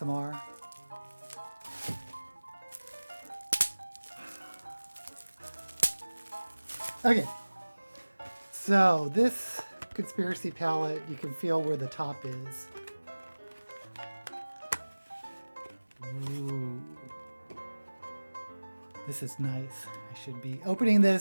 Okay. So this Conspiracy Palette, you can feel where the top is. Ooh. This is nice. I should be opening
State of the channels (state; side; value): inverted; both; correlation -1.00